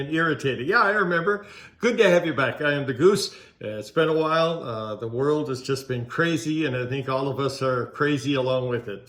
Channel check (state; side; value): identical; both; correlation 1.00